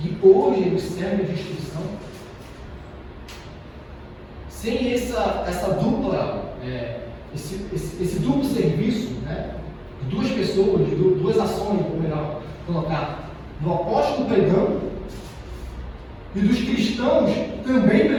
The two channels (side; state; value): both; identical; correlation 1.00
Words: hoje eles servem de instrução. Sem essa dupla, esse duplo serviço, né, de 2 pessoas, de 2 ações, ou melhor colocar, do apóstolo pregando e dos cristãos também